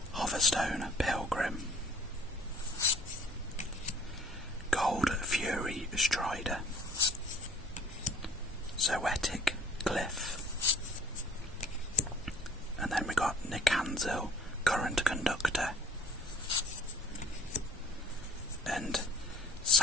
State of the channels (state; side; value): normal; both; correlation 0.52